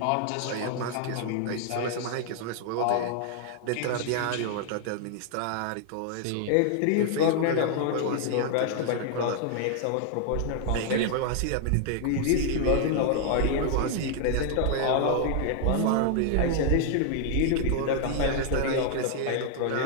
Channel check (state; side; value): different; both; correlation 0.00